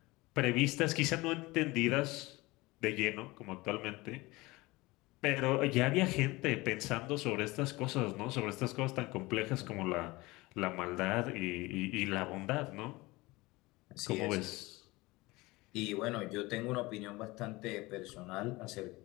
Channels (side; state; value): right; quieter; 21.7 dB